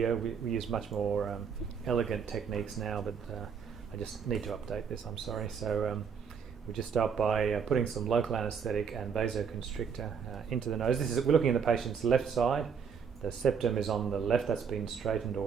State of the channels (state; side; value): quieter; left; 6.6 dB